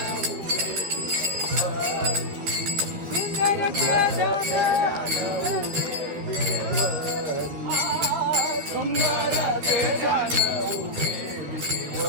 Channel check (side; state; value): left; late; 12 ms